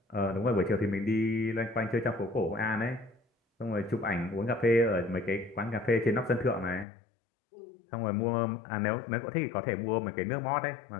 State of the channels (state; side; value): drops out; right; at 6.9 s